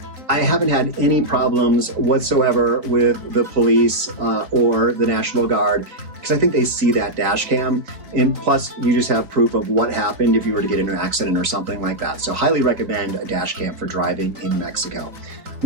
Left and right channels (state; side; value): late; left; 3.8 ms